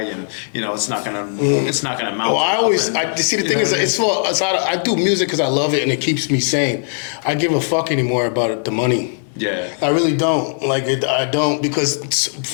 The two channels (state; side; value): silent; right; digital silence